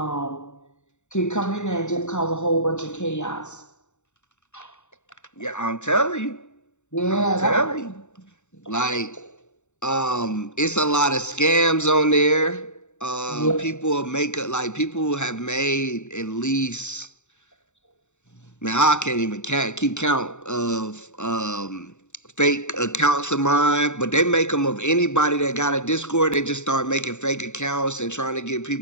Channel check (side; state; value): right; late; 0.84 ms